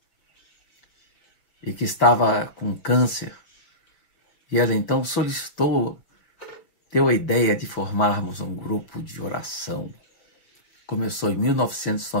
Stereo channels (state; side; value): late; right; 5.5 ms